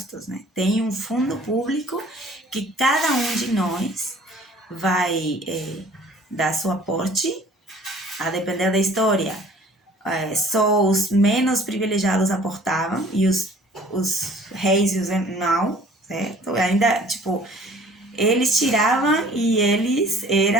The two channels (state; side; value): normal; both; correlation 0.52